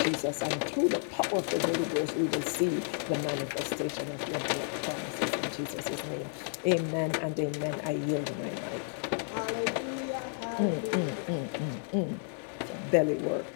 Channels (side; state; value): right; silent; 57 dB below the other